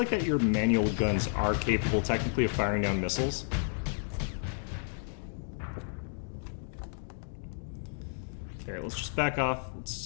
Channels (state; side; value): silent; right; digital silence